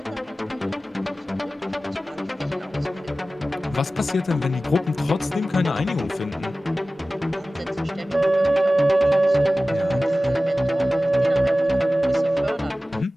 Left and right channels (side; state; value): both; normal; correlation 0.96